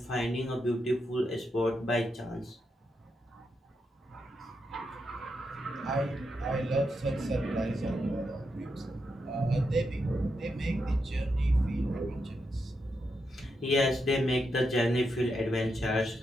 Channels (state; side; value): normal; both; correlation 0.84